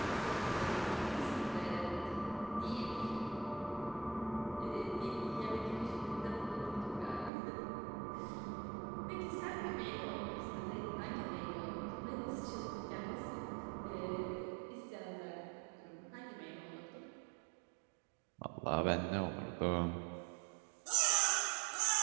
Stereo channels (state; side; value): drops out; left; at 7.3 s